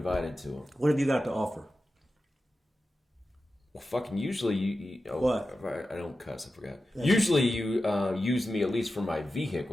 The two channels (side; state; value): both; normal; correlation 0.92